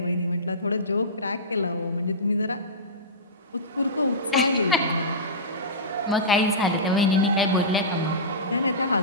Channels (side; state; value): both; normal; correlation -0.18